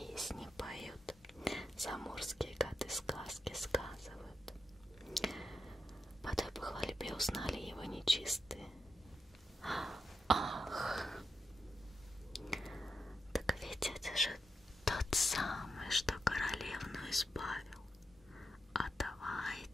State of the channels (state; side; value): normal; both; correlation 0.87